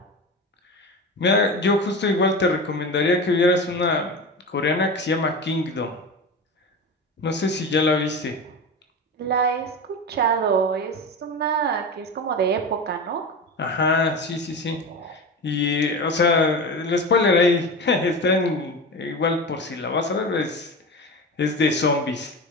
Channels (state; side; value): normal; both; correlation 0.26